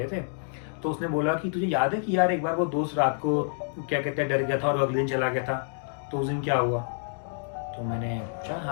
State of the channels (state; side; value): silent; right; digital silence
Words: थे। तो उसने बोला कि तुझे याद है कि यार एक बार वो दोस्त रात को क्या कहते हैं डर गया था और अगले दिन चला गया था, तो उस दिन क्या हुआ? तो मैंने पूछा